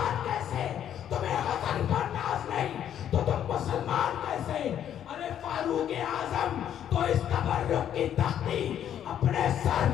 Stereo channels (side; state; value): right; quieter; 10.0 dB